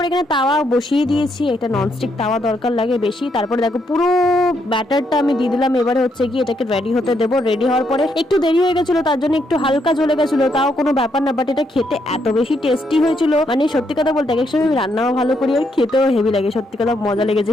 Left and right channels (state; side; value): normal; both; correlation 0.76